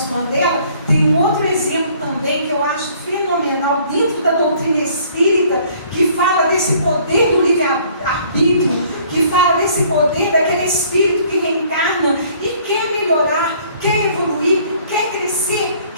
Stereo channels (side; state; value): both; inverted; correlation -0.58